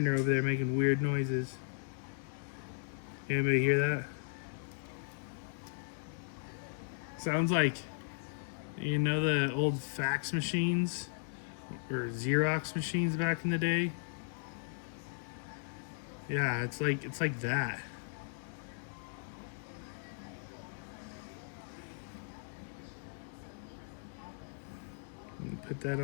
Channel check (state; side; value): silent; right; digital silence